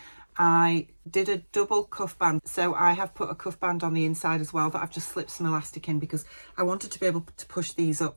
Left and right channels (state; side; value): inverted; both; correlation -1.00